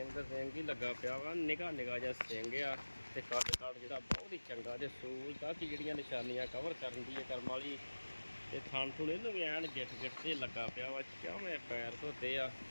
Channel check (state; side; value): inverted; both; correlation -1.00